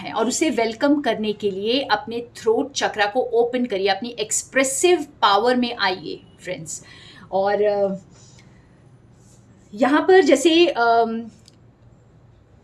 और उसे वेलकम करने के लिए अपने थ्रोट चक्रा को ओपन करिए, अपनी एक्सप्रेसिव पावर में आइए फ्रेंड्स। और यहाँ पर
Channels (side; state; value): both; identical; correlation 1.00